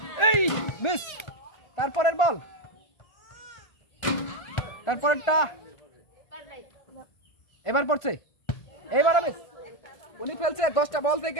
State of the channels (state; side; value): late; right; 1.4 ms